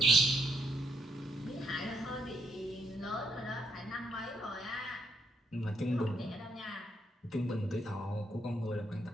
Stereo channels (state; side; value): normal; both; correlation 0.75